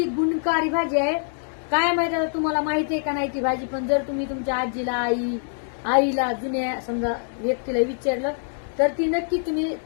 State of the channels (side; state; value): right; silent; digital silence